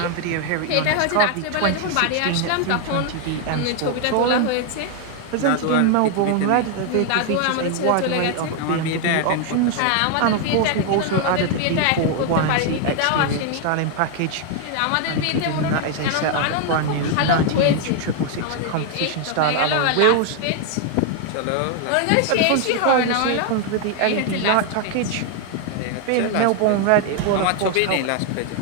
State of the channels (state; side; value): different; both; correlation 0.00